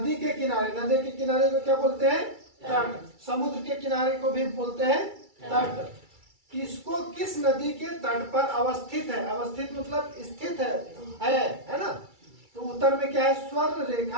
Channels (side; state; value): left; late; 2.3 ms